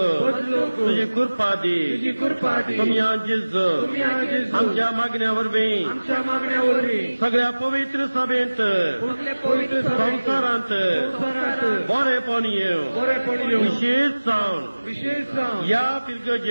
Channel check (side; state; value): both; inverted; correlation -1.00